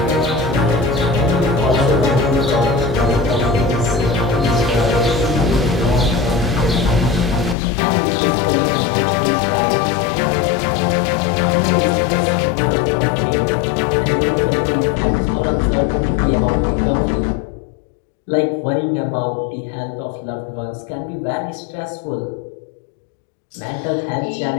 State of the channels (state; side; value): drops out; right; at 7.6 s